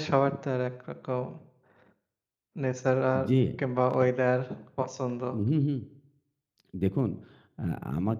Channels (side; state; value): both; identical; correlation 1.00